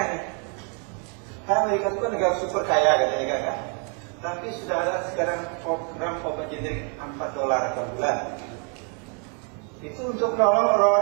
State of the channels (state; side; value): quieter; left; 38.7 dB